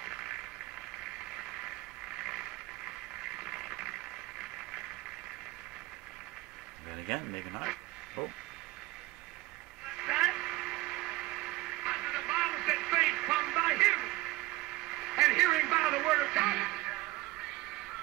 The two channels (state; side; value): quieter; left; 19.3 dB